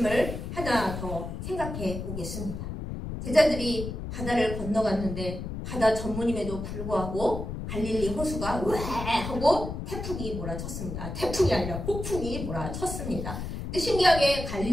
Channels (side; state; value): left; noise; rumble, 6 dB below the sound